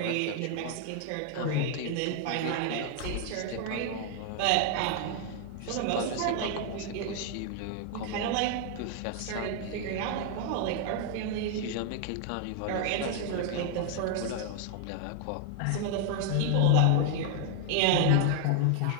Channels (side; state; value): both; different; correlation 0.00